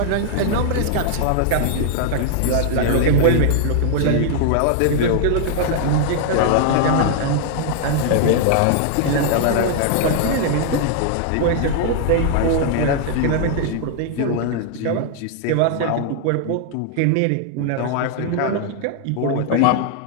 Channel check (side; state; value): both; different; correlation -0.01